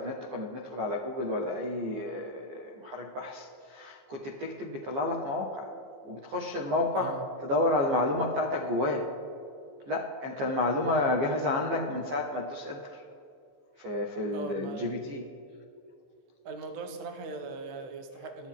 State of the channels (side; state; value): left; late; 15 ms